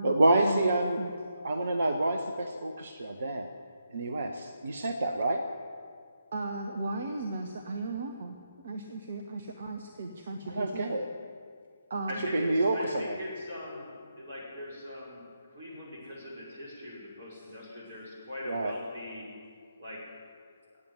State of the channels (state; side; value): inverted; both; correlation -0.84